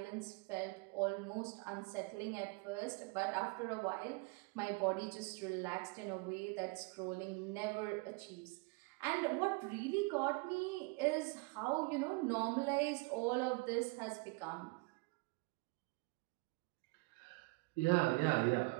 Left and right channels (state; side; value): quieter; left; 27.2 dB